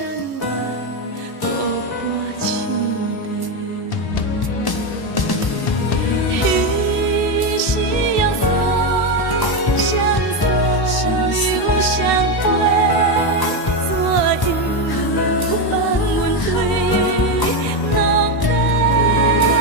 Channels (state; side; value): late; right; 19 ms